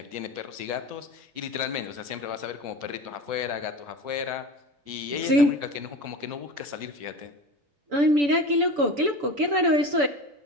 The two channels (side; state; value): left; late; 6.9 ms